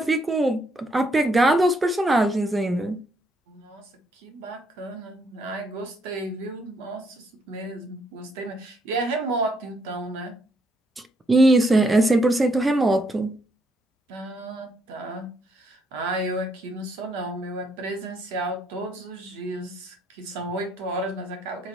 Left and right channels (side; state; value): both; normal; correlation 0.73